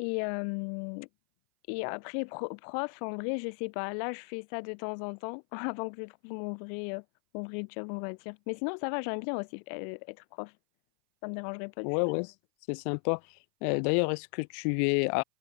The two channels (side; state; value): right; silent; 55 dB below the other